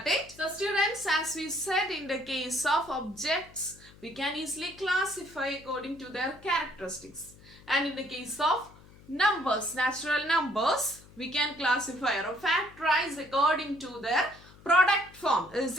it? So students, as we said, in the case of objects, we can easily classify according to their characteristics. And in the case of numbers, natural numbers, we can classify or factorize according to their product form. Is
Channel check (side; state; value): left; noise; hum, 23 dB below the sound